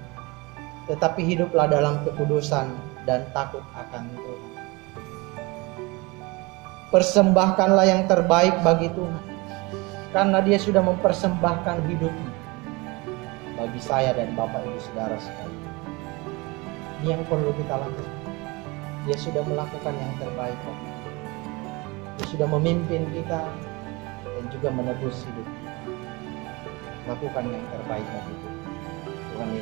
tetapi hiduplah dalam kekudusan dan takut akan Tuhan. Persembahkanlah yang terbaik bagi Tuhan, karena Dia sudah mempersembahkan hidupnya bagi saya dan Bapak Ibu Saudara sekalian. Ini yang perlu kita lakukan. Dia sudah melakukan yang terbaik. Dia sudah memimpin kita dan juga menebus hidup kita. Lakukan yang terbaik bagi Tuhan. Tuhan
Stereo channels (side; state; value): left; quieter; 25.3 dB